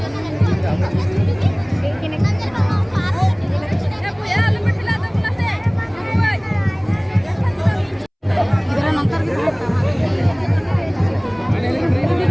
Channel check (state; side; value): identical; both; correlation 1.00